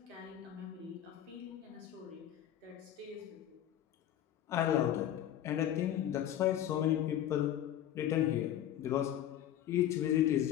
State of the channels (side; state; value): right; quieter; 11.4 dB